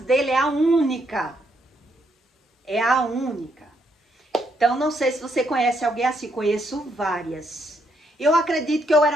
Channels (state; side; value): normal; both; correlation 0.75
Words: é a única. É a única. Então, não sei se você conhece alguém assim. Conheço várias. Eu acredito que eu